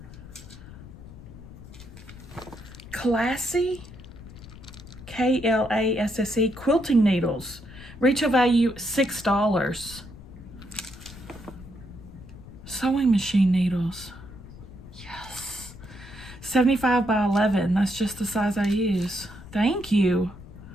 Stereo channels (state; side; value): noise; left; rumble, 16 dB below the sound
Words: Classy, Klasse quilting needles. Retail value $6. Sewing machine needles. Yes. 75 by 11. That's just the size I use. Thank you.